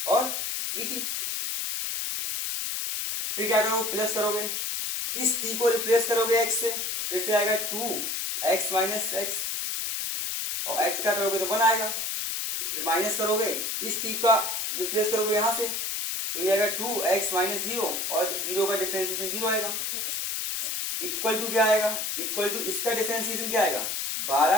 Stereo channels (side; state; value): left; noise; hiss, 2 dB below the sound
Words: और dt। फिर क्या करोगे प्लस करोगे, इस t को रिप्लेस करोगे x से, फिर से आएगा 2x माइनस x, और x का करोगे तो 1 आएगा। फिर माइनस करोगे, इस t का रिप्लेस करोगे यहाँ से, तो ये आएगा 2x माइनस 0 और 0 का डिफरेंशिएशन 0 आएगा। इक्वल टू क्या आएगा, इक्वल टू इसका डिफरेंशिएशन क्या आएगा